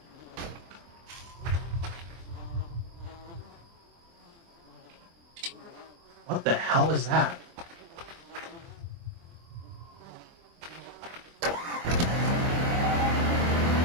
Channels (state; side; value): late; left; 24 ms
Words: What the hell is that?